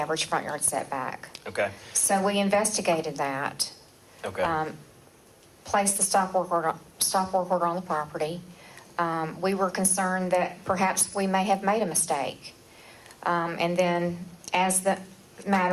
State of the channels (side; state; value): both; identical; correlation 1.00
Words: front yard setback. Okay. So we investigated that. Okay. Placed the stop work order on the property. We were concerned that perhaps we may have made a mistake. And then as the